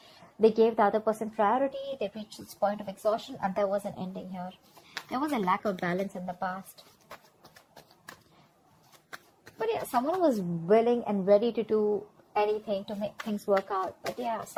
They gave the other person priority. They reached this point of exhaustion, and there was an ending here. There was a lack of balance in the past. But yeah, someone was willing and ready to do anything to make things work out. But yeah,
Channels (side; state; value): both; identical; correlation 1.00